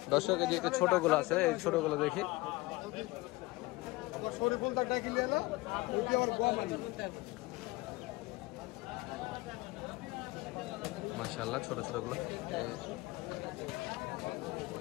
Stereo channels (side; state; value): right; quieter; 21.5 dB